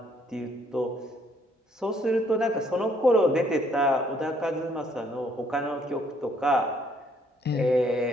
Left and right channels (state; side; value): normal; both; correlation 0.66